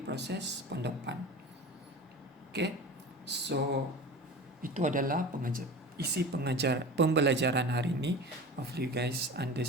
proses pendopan. Okey, so itu adalah isi pembelajaran hari ini. Hopefully you guys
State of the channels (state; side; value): normal; both; correlation 0.34